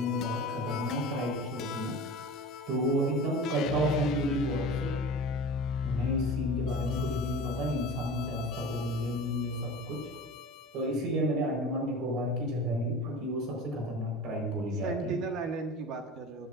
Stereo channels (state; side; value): normal; both; correlation 0.35